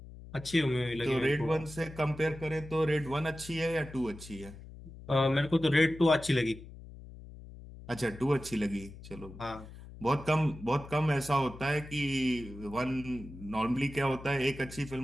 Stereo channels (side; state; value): left; noise; hum, 16 dB below the sound